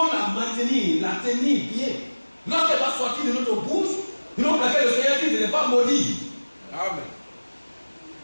la maintenir, la tenir bien. Lorsqu'elle va sortir de notre bouche, nous pour laquelle le Seigneur dit de ne pas maudire. Amen.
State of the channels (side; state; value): both; inverted; correlation -1.00